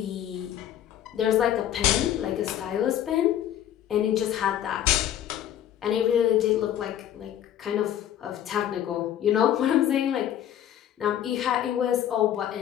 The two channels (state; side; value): quieter; right; 11.0 dB